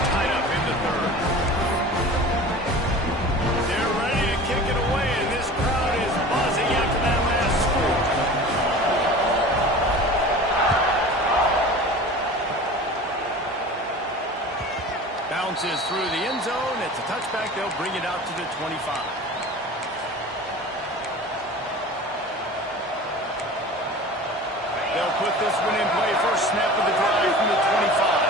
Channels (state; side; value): normal; both; correlation 0.38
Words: tied up in the third. They're ready to kick it away, and this crowd is buzzing after that last score. Bounces through the end zone. It's a touchback. They'll bring it out to the 25. They'll put this one in play. First snap of the drive from the 25.